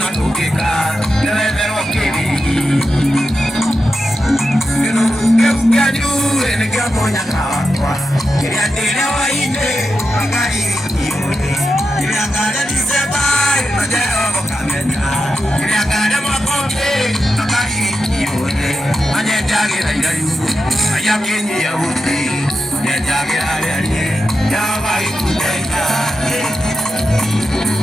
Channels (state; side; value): normal; both; correlation 0.88